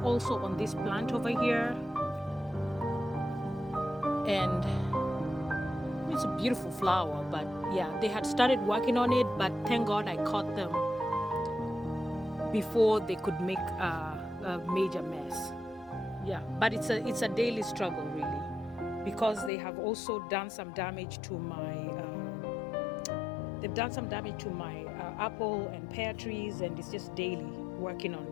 also on this plant over here. And it's a beautiful flower, but yeah, they had started working on it, but thank God I caught them before they could make a major mess. Yeah, but it's a daily struggle really, because they have also done some damage to my they've done some damage to my apple and pear trees, and it's just daily working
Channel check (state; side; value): drops out; right; at 19.5 s